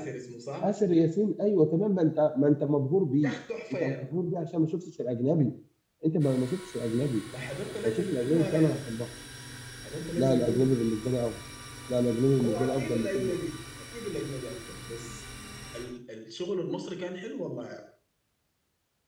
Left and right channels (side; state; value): both; identical; correlation 1.00